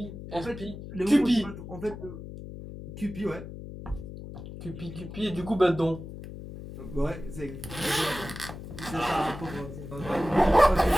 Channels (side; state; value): left; noise; hum, 11 dB below the sound